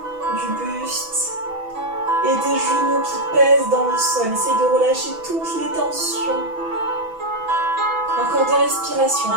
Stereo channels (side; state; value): left; late; 6.1 ms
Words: du buste. Et des genoux qui pèsent dans le sol. Essaye de relâcher toutes les tensions. Encore 2 respirations.